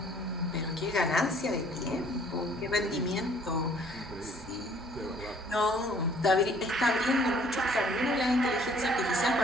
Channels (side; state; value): both; normal; correlation 0.58